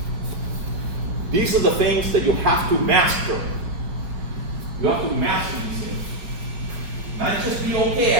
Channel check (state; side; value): late; left; 5.8 ms